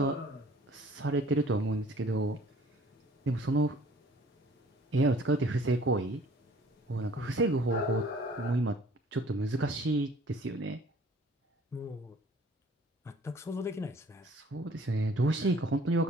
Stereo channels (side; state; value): both; normal; correlation 0.53